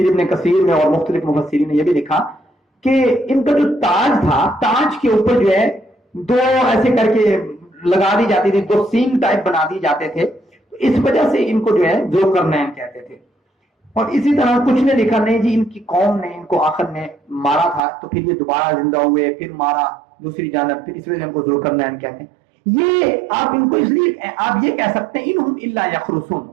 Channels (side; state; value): left; drops out; at 17.8 s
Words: ابن کثیر میں اور مختلف مفسرین نے یہ بھی لکھا کہ ان کا جو تاج تھا، تاج کے اوپر جو ہے دو ایسے کر کے لگا دی جاتی تھی، دو سینگ ٹائپ بنا دی جاتے تھے، تو اس وجہ سے ان کو جو ہے ذوالقرنین کہتے تھے. اور اسی طرح کچھ نے لکھا نہیں جی ان کی قوم نے ان کو آخر میں مارا تھا تو پھر یہ دوبارہ زندہ ہوئے، پھر مارا دوسری جانب، پھر اس وجہ سے ان کو ذوالقرنین کہتے ہیں. یہ آپ ان کو اس لیے آپ یہ کہہ سکتے ہیں انہم الا یخرسون،